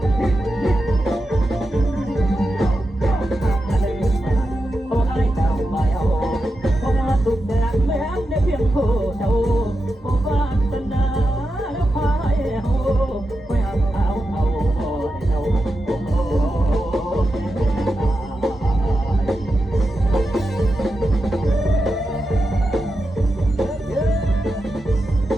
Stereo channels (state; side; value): normal; both; correlation 0.89